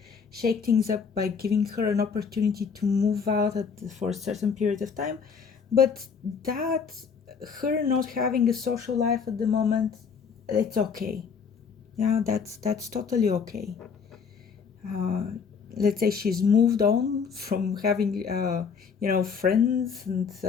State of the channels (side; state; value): right; quieter; 6.1 dB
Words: shake things up by giving her an opportunity to move out for a certain period of time. But that, her not having a social life at the moment, it's okay. Yeah, that's totally okay. Let's say she's moved on from having friends and